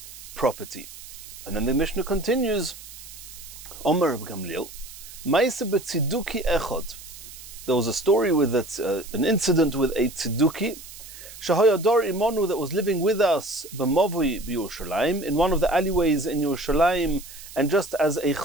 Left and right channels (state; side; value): noise; right; hiss, 15 dB below the sound